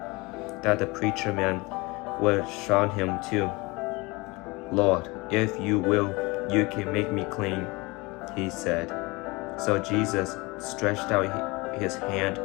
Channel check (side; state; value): right; quieter; 24.7 dB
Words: that the preacher man would shun him too. "Lord, if you will, you can make me clean," he said. So Jesus stretched out his hand